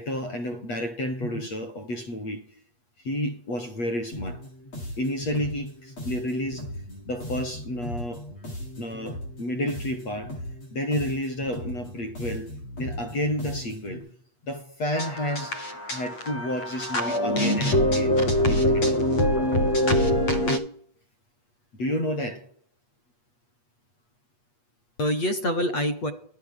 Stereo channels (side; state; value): right; late; 8.3 ms